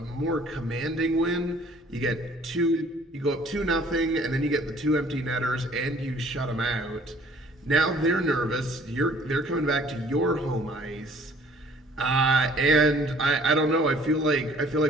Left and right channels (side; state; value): both; normal; correlation 0.55